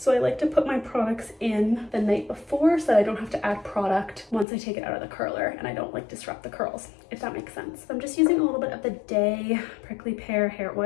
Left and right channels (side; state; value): right; drops out; at 4.5 s